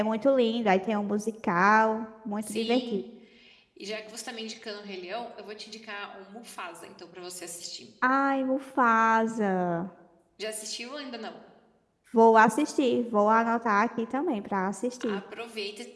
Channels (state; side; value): identical; both; correlation 1.00